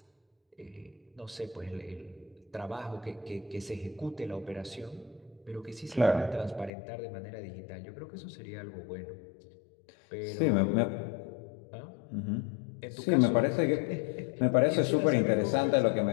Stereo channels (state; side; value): drops out; right; at 6.7 s